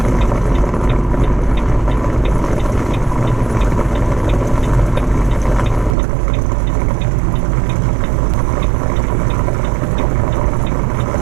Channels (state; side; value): drops out; left; at 6.0 s